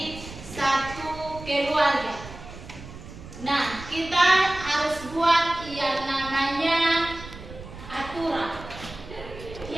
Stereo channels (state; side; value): noise; right; rumble, 14 dB below the sound